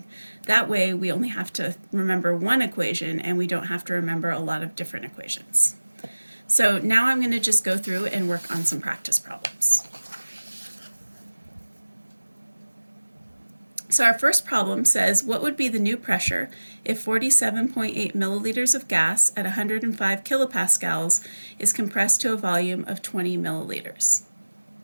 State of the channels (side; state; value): both; inverted; correlation -1.00